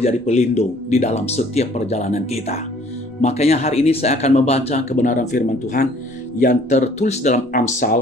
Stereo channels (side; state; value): both; normal; correlation 0.56